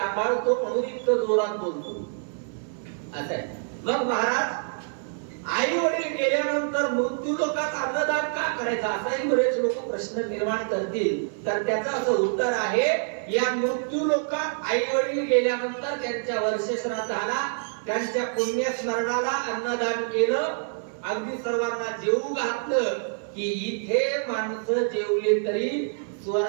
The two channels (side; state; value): left; silent; digital silence